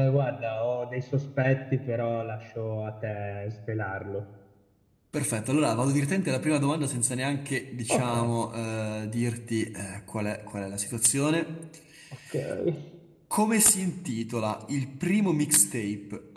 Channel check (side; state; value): both; identical; correlation 1.00